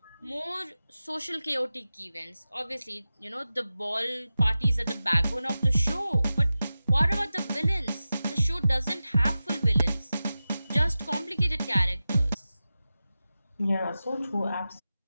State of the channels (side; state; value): both; inverted; correlation -0.94